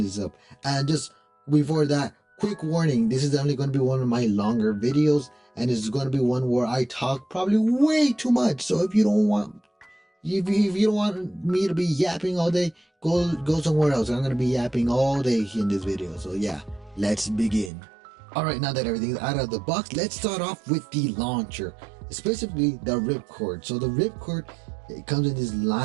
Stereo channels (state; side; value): drops out; left; at 17.7 s